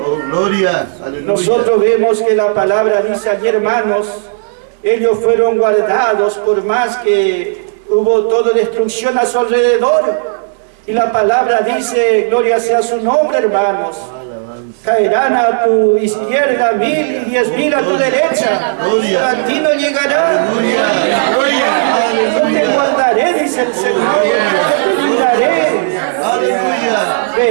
Nosotros vemos que la palabra dice allí, hermanos, ellos fueron guardados por más que hubo toda destrucción a su alrededor. Y la palabra dice, gloria sea su nombre, hermanos. Caerán a tu izquierda 1000 y 10.000 a tu derecha. A ti no llegará. Yo te guardaré, dice el Señor. Yo te libraré.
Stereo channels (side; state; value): left; silent; digital silence